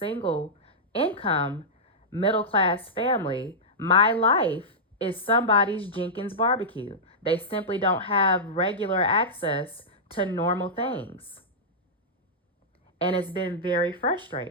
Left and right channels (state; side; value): normal; both; correlation -0.11